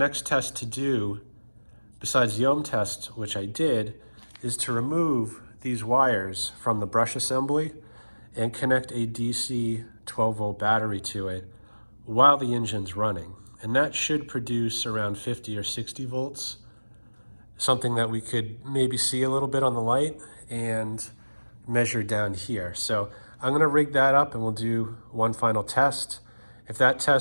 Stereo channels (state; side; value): inverted; both; correlation -1.00